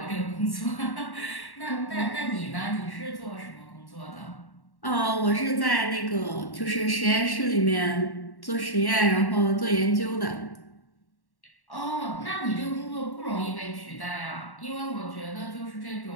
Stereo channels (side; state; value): right; late; 1.1 ms